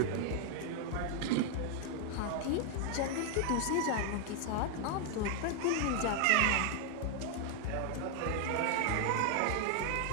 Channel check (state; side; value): different; both; correlation 0.00